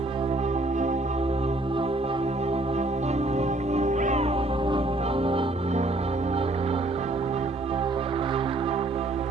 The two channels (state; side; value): normal; both; correlation 0.63